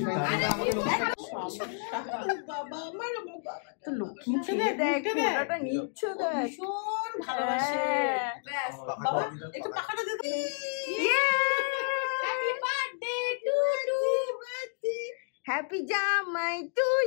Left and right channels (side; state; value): right; silent; digital silence